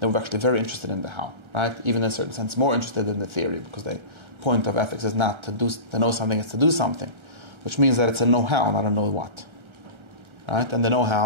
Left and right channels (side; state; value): left; late; 1.3 ms